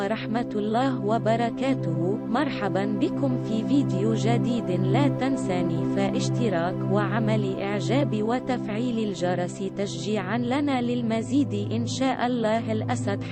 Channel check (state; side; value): identical; both; correlation 1.00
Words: الله وبركاته. مرحبا بكم في فيديو جديد. لا تنساني فاشتراك وعمل إعجاب وتفعيل الجرس تشجيعا لنا للمزيد إن شاء الله. الأسد